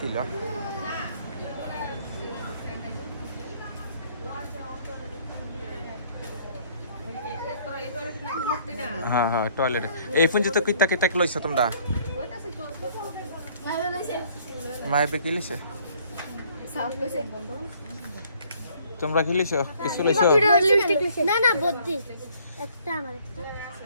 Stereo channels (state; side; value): inverted; both; correlation -0.61